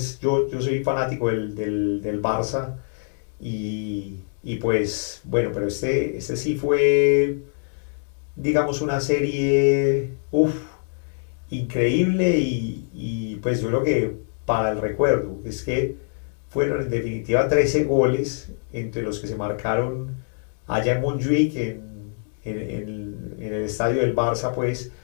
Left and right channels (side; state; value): right; silent; digital silence